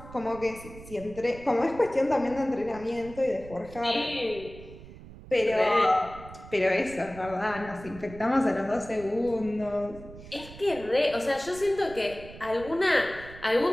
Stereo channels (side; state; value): right; noise; rumble, 16 dB below the sound